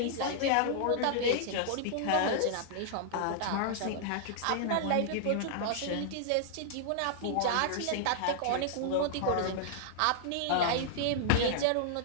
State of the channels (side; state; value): both; different; correlation -0.01